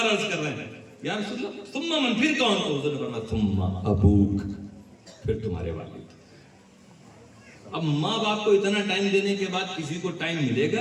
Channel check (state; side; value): identical; both; correlation 1.00